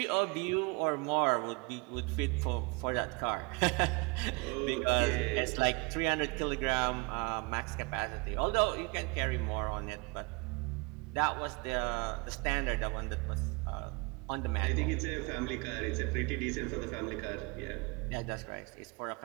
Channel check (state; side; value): quieter; left; 29.4 dB